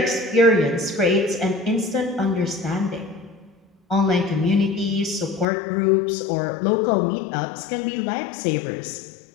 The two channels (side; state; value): right; drops out; at 5.5 s